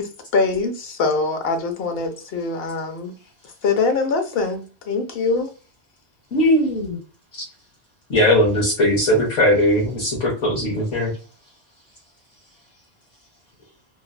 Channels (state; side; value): normal; both; correlation 0.00